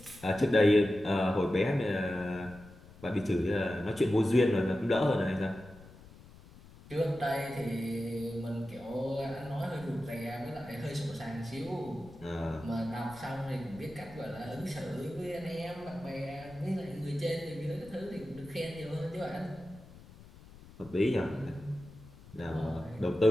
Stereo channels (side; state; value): left; noise; rumble, 20 dB below the sound